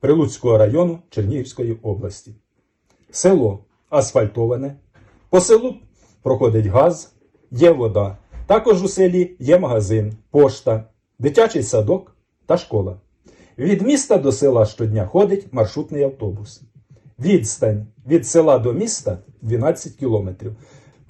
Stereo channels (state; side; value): identical; both; correlation 1.00